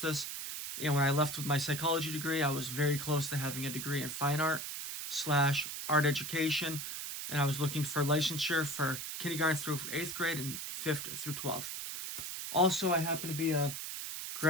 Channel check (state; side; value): noise; right; hiss, 6 dB below the sound